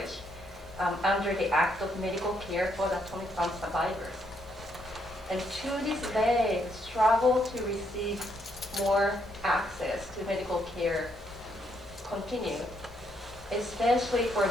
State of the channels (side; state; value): both; normal; correlation 0.74